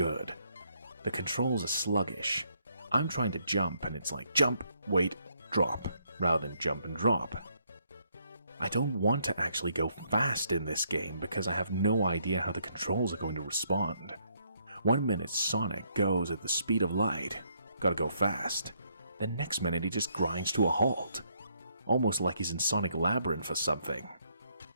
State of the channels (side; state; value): both; inverted; correlation -0.72